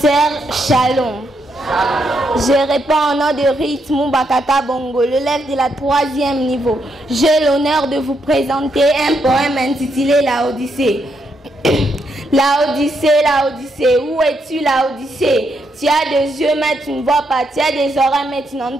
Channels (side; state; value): both; normal; correlation 0.78